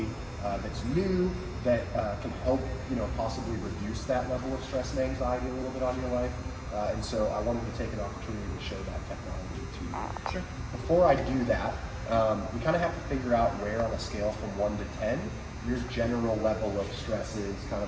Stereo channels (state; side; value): identical; both; correlation 1.00